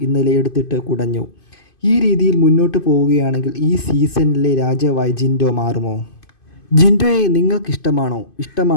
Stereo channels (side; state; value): right; late; 2.5 ms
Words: ഇന്നലെ എടുത്തിട്ട് കുടഞ്ഞു. ഈ രീതിയിൽ മുന്നോട്ട് പോവുകയാണെങ്കിൽ ഈ സീസണിലെ രാജാവായി ജിൻഡോ മാറുമോ? ജിൻഡോയെ നിങ്ങൾക്കിഷ്ടമാണോ?